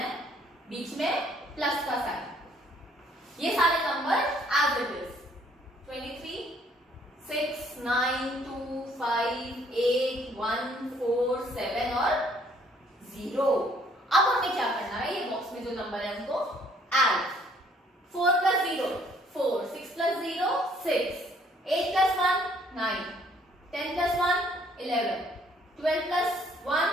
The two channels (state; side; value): normal; both; correlation 0.63